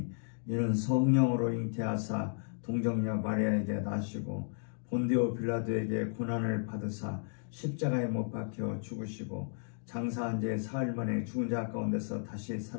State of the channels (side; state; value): right; silent; digital silence